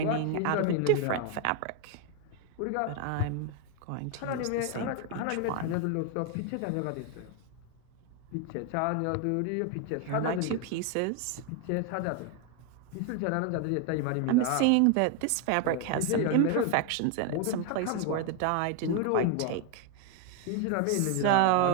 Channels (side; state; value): both; different; correlation 0.01